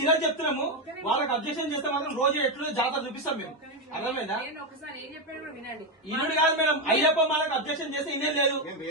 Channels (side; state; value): both; normal; correlation 0.07